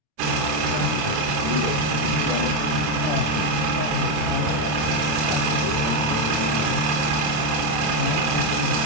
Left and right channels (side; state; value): left; late; 26 ms